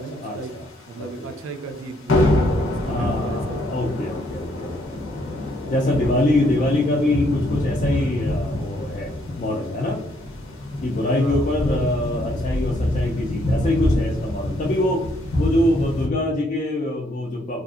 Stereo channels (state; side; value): normal; both; correlation 0.70